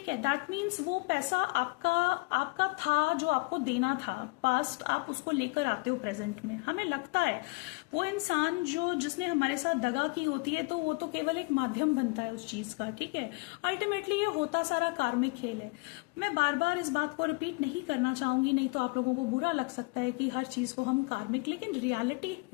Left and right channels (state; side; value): quieter; right; 28.2 dB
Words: है, दैट मीन्स वो पैसा आपका था, जो आपको देना था पास्ट, आप उसको लेकर आते हो प्रेजेंट में। हमें लगता है वो इंसान जिसने हमारे साथ दगा की होती है तो वो तो केवल एक माध्यम बनता है उस चीज का, ठीक है। अल्टीमेटली ये होता सारा कार्मिक खेल है। मैं बार बार इस बात को रिपीट नहीं करना चाहूंगी, नहीं तो आप लोगों को बुरा लग सकता है कि हर चीज को हम कार्मिक, लेकिन रियलिटी